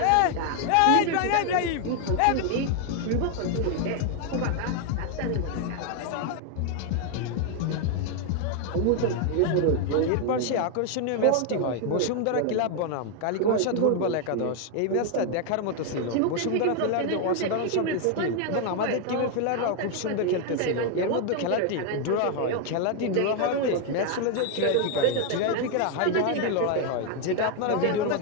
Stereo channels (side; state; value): both; different; correlation 0.00